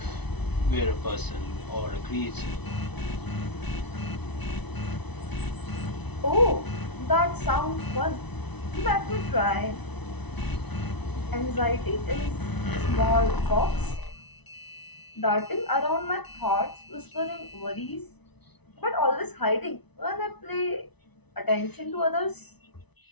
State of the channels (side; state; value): right; late; 0.99 ms